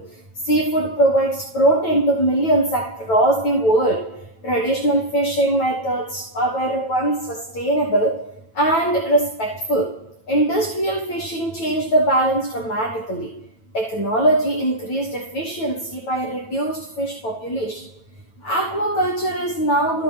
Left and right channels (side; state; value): right; late; 9.1 ms